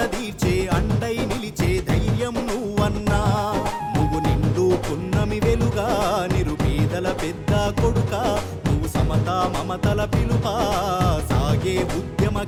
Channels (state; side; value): identical; both; correlation 1.00